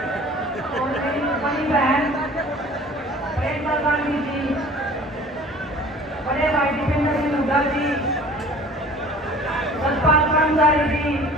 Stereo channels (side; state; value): both; normal; correlation 0.46